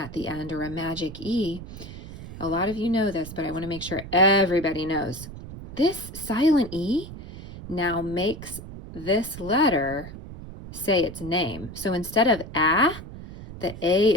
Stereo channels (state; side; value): noise; right; rumble, 13 dB below the sound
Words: the end or a magic E, a lot of you know this, but I want to make sure everybody knows. This silent E now makes this letter say its name. So instead of A, the A